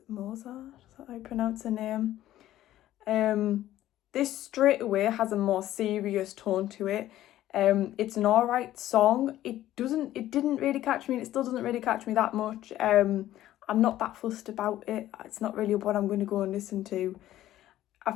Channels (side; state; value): right; quieter; 13.7 dB